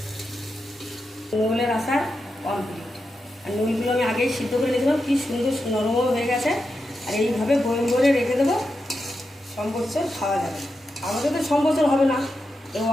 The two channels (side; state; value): both; normal; correlation 0.88